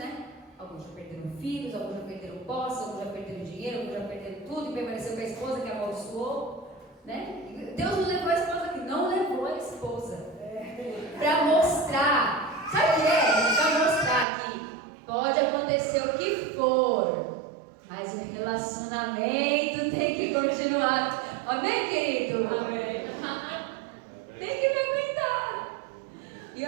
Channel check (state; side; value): drops out; left; at 14.2 s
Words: Alguns já perderam filhos, alguns já perderam posse, alguns já perderam dinheiro, alguns já perderam tudo e permaneceu com a esposa que amaldiçoou, né? Deus não levou a esposa aqui, não levou a esposa. Para mostrar, sabe o que é? Para mostrar que pode acontecer o que for, mas o relacionamento tem que continuar. Amém, querido? Amém. Tem que me aguentar. E